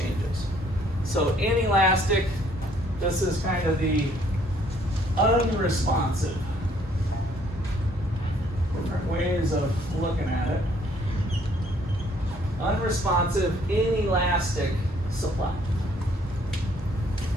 So inelastic, this is kind of the unresponsive. Different ways of looking at it. Unresponsive, inelastic supply.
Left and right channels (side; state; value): both; normal; correlation 0.64